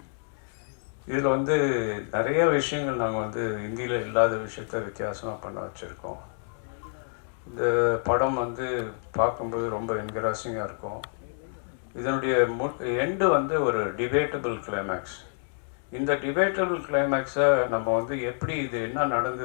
இதில் வந்து நிறைய விஷயங்கள் நாங்கள் வந்து இந்தியில் இல்லாத விஷயத்த வித்தியாசமாக பண்ண வச்சுருக்கோம். இந்த படம் வந்து பார்க்கும்போது ரொம்ப என்கரேஜிங்காக இருக்கும். இதனுடைய எண்டு வந்து ஒரு டிபேட்டபிள் கிளைமேக்ஸ். இந்த டிபேட்டபிள் கிளைமேக்ஸை நம்ம வந்து எப்படி இது என்ன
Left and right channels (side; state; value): right; silent; digital silence